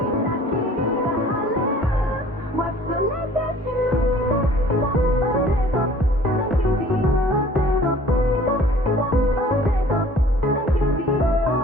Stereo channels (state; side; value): normal; both; correlation 0.51